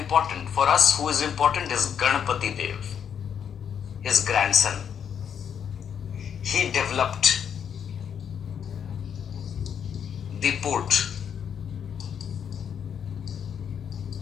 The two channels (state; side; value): quieter; right; 8.0 dB